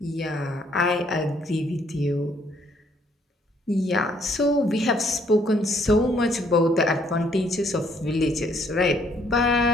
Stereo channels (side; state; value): both; normal; correlation 0.66